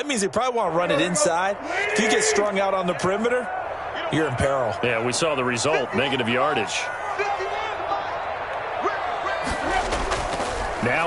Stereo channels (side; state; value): both; identical; correlation 1.00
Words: means they probably want to run it inside. If you get strung out on the perimeter, you're in peril. Yeah, we saw the result, negative yardage.